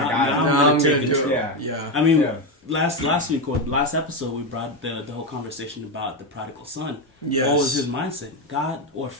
I'm going to take control. Yeah. I mean, last week or last episode, we brought the whole conversation about the prodigal son. Yes. What was his mindset? God or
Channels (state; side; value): normal; both; correlation 0.11